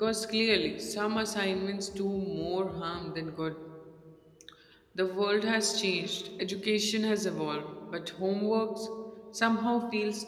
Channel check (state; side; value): identical; both; correlation 1.00